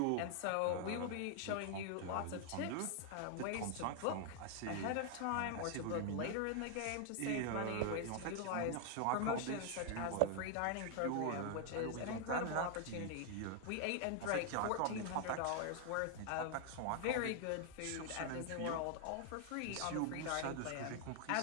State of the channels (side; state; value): both; different; correlation 0.00